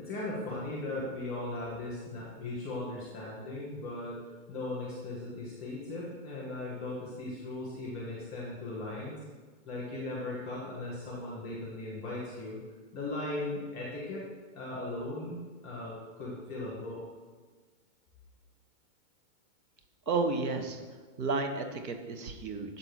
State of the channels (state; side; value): late; right; 2.2 ms